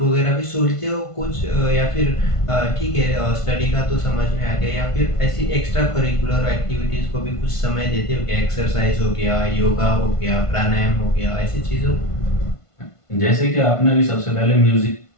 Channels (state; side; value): late; right; 1.5 ms